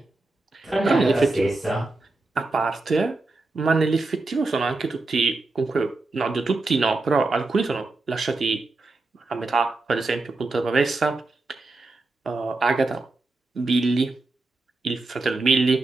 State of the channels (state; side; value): quieter; left; 3.3 dB